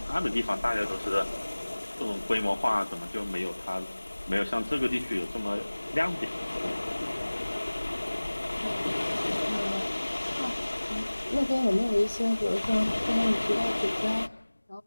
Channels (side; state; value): both; inverted; correlation -1.00